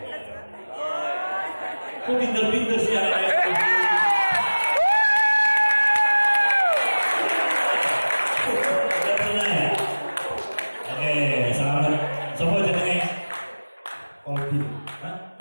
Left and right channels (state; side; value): inverted; both; correlation -1.00